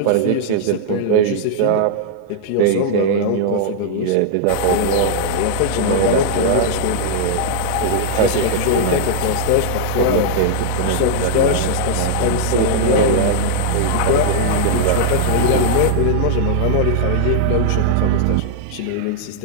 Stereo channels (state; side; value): different; both; correlation -0.01